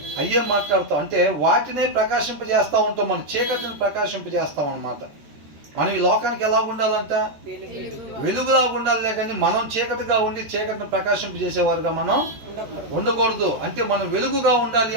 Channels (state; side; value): late; left; 13 ms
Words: అయ్యే మాట్లాడతాం. అంటే వాటినే ప్రకాశింపజేస్తూ ఉంటాం, మన చీకటిని ప్రకాశింపజేస్తాం అనమాట. మనం ఈ లోకానికి ఎలా ఉండాలంట? వెలుగులా ఉండాలి, కానీ మనం చీకటిగా ఉండి చీకటిని ప్రకాశింపజేసేవారుగా మనం ఉండకూడదు. అంటే మనం వెలుగుగా ఉండాలి